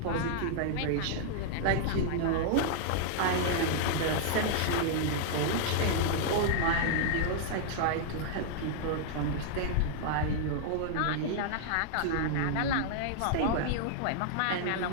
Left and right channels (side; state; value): both; different; correlation -0.01